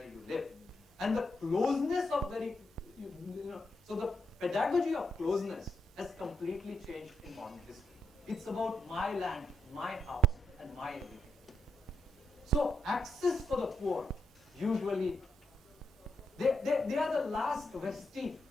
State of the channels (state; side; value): normal; both; correlation 0.81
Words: you live. And the closeness of so the pedagogy of closeness has completely changed in modern history. It's about my land, my house, and my everything. So access for the poor, usually, they are the last vestige,